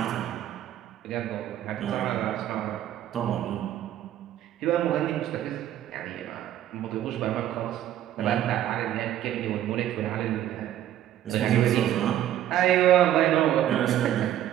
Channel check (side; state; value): left; quieter; 11.9 dB